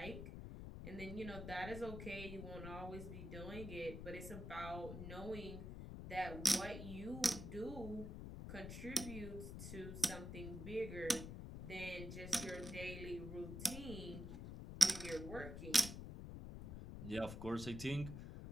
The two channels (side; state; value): left; noise; rumble, 7 dB below the sound